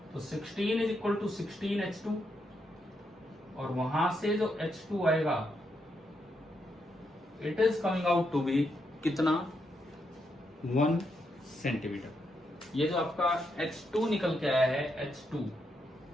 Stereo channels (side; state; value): both; normal; correlation 0.81